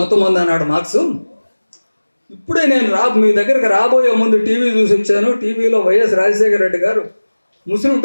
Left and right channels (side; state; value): both; inverted; correlation -1.00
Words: అన్నాడు మార్క్స్. ఇప్పుడే నేను మీ దగ్గరకు రాబోయే ముందు టీవీ చూసి వచ్చాను. టీవీలో వైఎస్ రాజశేఖర రెడ్డి గారు ముస్లిం